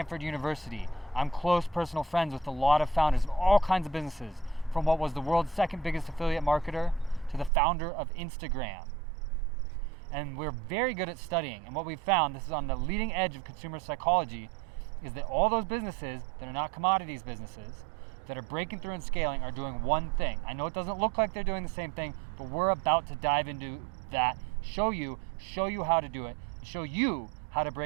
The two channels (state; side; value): drops out; left; at 7.5 s